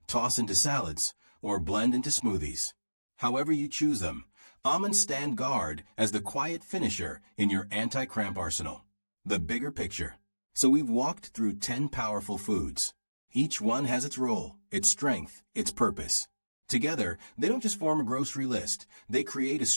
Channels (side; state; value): both; inverted; correlation -1.00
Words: toss into salads, or blend into smoothies. However you choose them, almonds stand guard as the quiet finisher in your anti-cramp arsenal. The bigger picture. So we've walked through 10 powerful foods. Each one has its role, its strength, its purpose. Together, they don't just form a grocery list. They create a